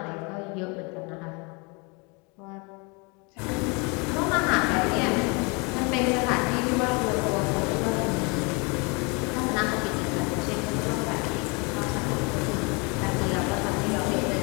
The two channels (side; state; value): right; quieter; 30.3 dB